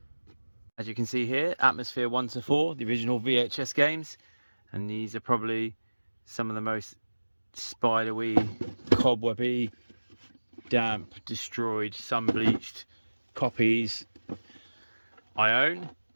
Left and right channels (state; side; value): inverted; both; correlation -1.00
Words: As you can see here, Atmosfear 1 to 4, the original VHS games, and these are probably some of the most spidery, cobwebby, damp, destroyed, sun-bleached copies I own,